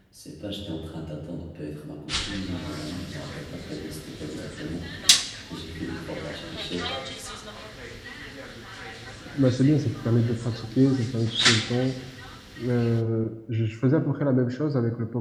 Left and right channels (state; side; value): identical; both; correlation 1.00